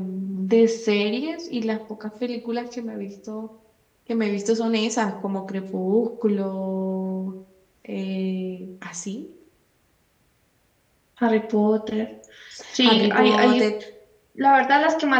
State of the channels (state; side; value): identical; both; correlation 1.00